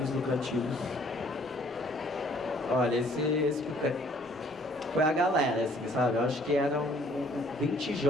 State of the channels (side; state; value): both; normal; correlation 0.60